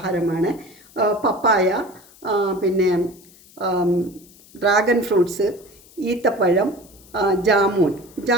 പപ്പായ, പിന്നെ ഡ്രാഗൺ ഫ്രൂട്ട്സ്, ഈത്തപ്പഴം,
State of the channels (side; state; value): left; noise; hiss, 25 dB below the sound